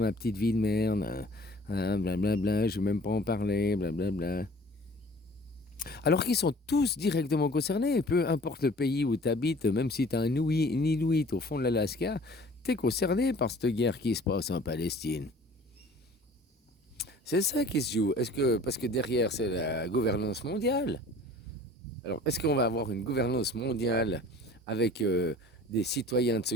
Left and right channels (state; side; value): normal; both; correlation 0.48